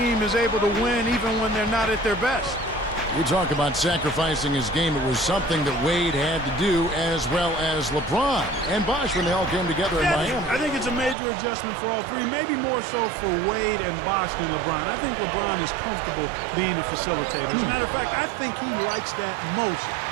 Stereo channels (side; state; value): left; drops out; at 11.2 s